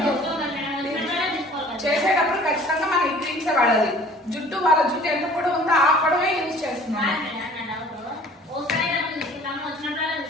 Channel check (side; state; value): both; normal; correlation 0.50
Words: చేసేటప్పుడు ఖచ్చితంగా మనం ఈ క్రీమ్స్ వాడాలి. జుట్టు వాళ్ళ జుట్టు ఎంత పొడవు ఉందో ఆ పొడవే యూజ్ చేస్తున్నాం.